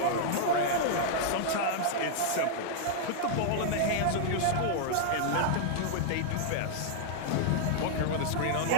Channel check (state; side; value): different; both; correlation -0.01